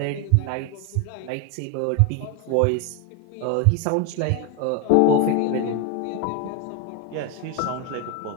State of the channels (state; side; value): different; both; correlation 0.01